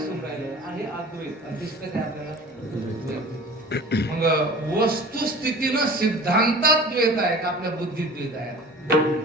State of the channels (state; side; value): normal; both; correlation 0.41